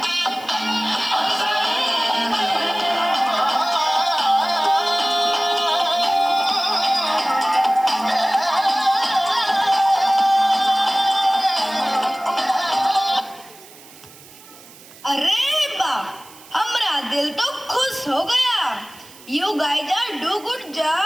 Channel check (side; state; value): right; noise; hiss, 21 dB below the sound